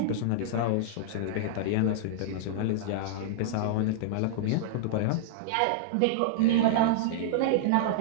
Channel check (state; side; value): different; both; correlation -0.01